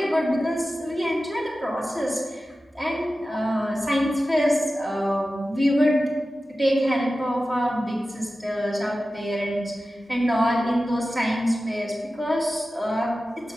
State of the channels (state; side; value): normal; both; correlation 0.94